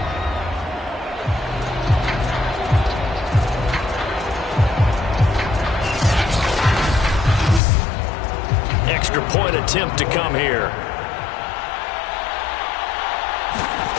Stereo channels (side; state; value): right; drops out; at 7.6 s